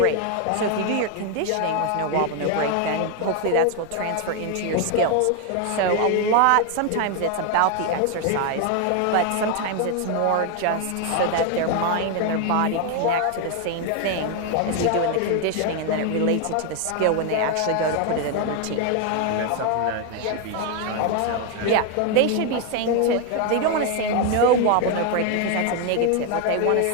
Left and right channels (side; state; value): both; different; correlation 0.01